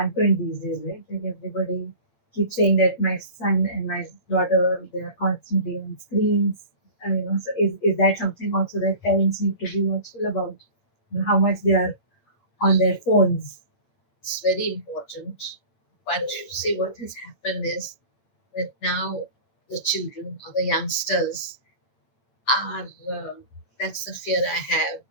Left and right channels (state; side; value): late; right; 8.7 ms